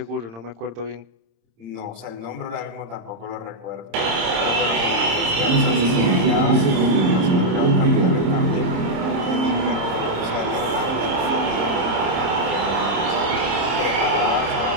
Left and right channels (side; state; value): left; late; 26 ms